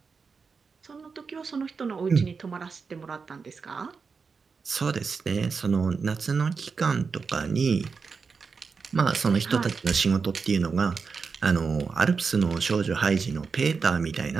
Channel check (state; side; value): quieter; left; 5.1 dB